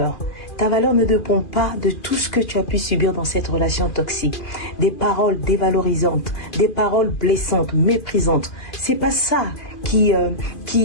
Ta valeur ne dépend pas de tout ce que tu as pu subir dans cette relation toxique. Des paroles dévalorisantes, des paroles blessantes, méprisantes. C'est pas ça qui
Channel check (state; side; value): late; right; 2.5 ms